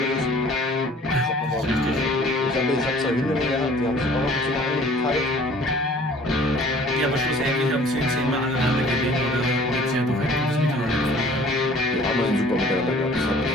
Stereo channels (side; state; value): both; normal; correlation 0.52